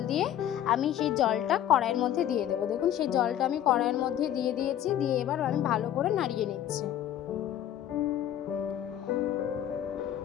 দিয়ে আমি সেই জলটা কড়াইয়ের মধ্যে দিয়ে দেবো। দেখুন সেই জলটা আমি কড়াইয়ের মধ্যে দিয়ে দিয়েছি। দিয়ে এবার আমি ভালো করে নাড়িয়ে নিচ্ছি।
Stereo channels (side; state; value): right; quieter; 11.2 dB